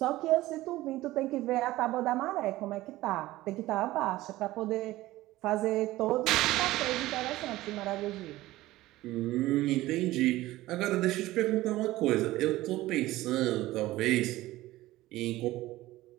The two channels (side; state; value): left; quieter; 17.1 dB